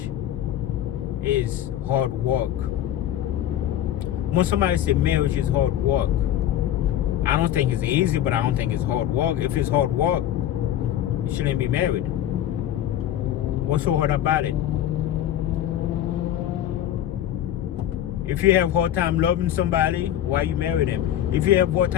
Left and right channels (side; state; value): right; quieter; 11.6 dB